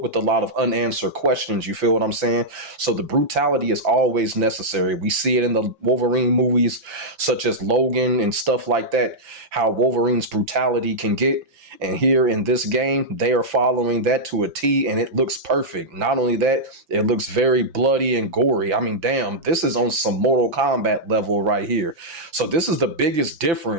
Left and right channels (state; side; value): late; left; 5.9 ms